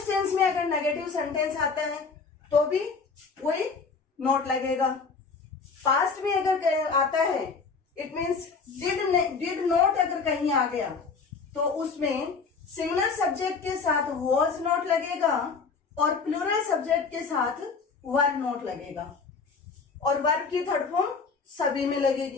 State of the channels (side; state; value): right; quieter; 4.9 dB